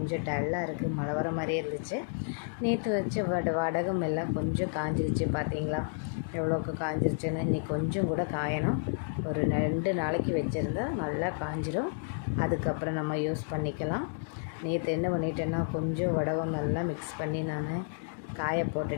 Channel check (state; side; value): silent; right; digital silence